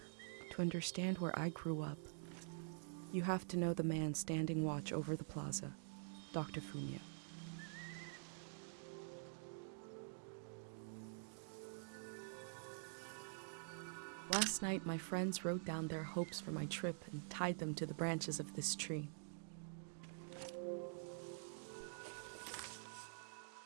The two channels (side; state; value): left; silent; digital silence